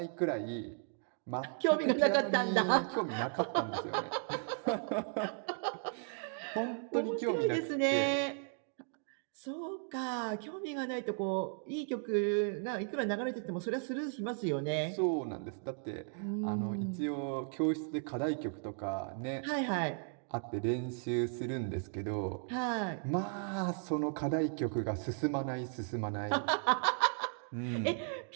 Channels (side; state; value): left; silent; 54 dB below the other